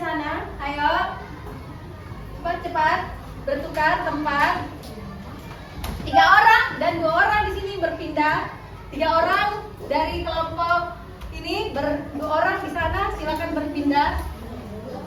Ayo, cepat bertukar tempat. 3 orang dan 2 orang di sini berpindah. 3 orang dari kelompok ini 2 orang di sana, silakan berpindah.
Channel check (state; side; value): identical; both; correlation 1.00